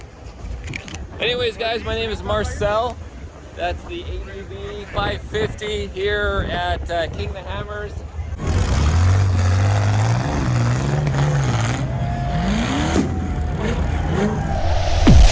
Anyways, guys, my name is Marcel. That's the ADV 550 here at King the Hammers.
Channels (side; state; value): both; identical; correlation 1.00